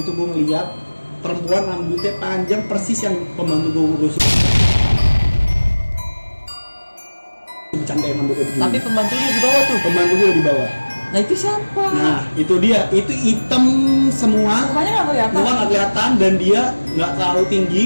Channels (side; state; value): both; inverted; correlation -1.00